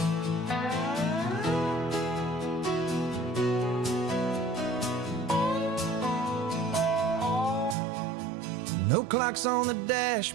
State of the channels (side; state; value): left; drops out; at 7.8 s